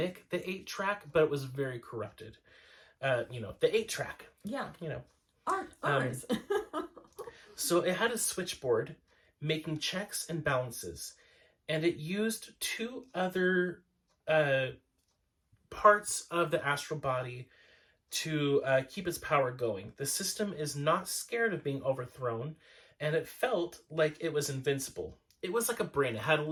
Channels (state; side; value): identical; both; correlation 1.00